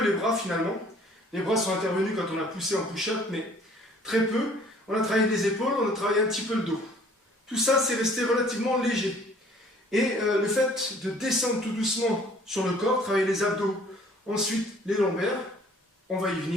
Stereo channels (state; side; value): normal; both; correlation 0.55